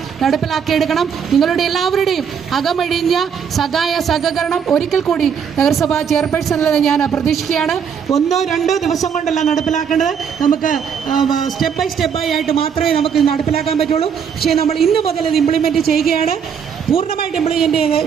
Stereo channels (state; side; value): quieter; left; 7.3 dB